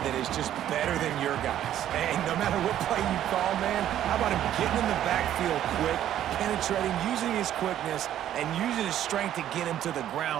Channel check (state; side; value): quieter; left; 11.5 dB